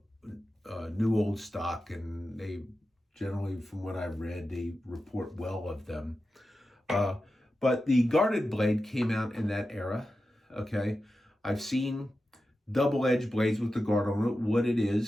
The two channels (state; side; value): normal; both; correlation 0.92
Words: new old stock, and they generally, from what I've read, they report well of them. But the guarded blade came out in that era. Okay, I've seen double-edged blades with the guard on it. What it